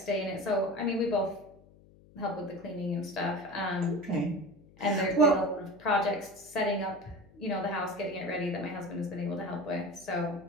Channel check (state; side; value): noise; left; hum, 25 dB below the sound